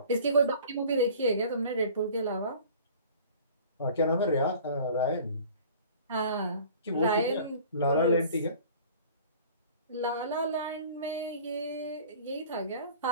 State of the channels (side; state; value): both; inverted; correlation -0.46